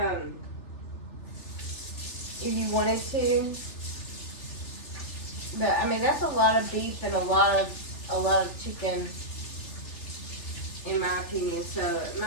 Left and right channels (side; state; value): right; late; 3.4 ms